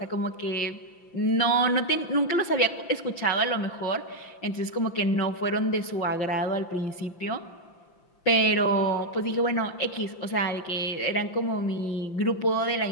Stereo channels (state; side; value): late; right; 5.8 ms